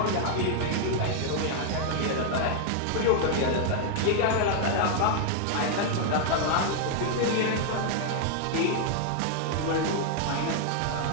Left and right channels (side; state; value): both; different; correlation 0.00